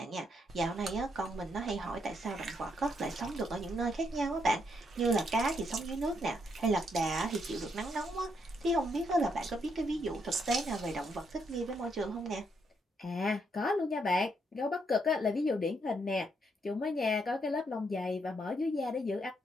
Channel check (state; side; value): normal; both; correlation 0.76